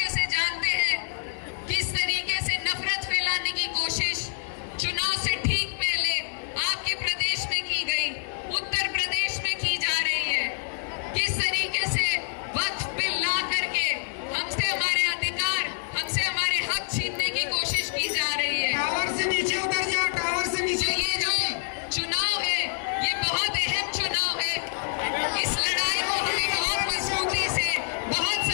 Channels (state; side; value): silent; right; 60 dB below the other